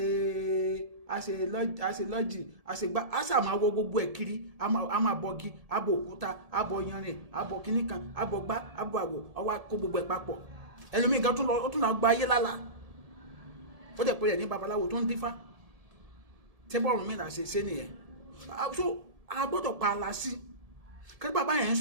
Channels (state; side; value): late; left; 1.7 ms